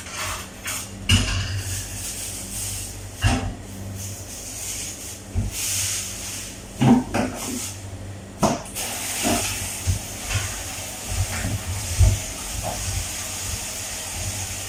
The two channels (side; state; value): both; identical; correlation 1.00